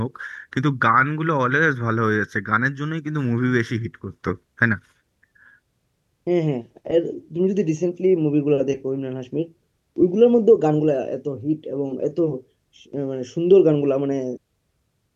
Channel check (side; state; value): both; identical; correlation 1.00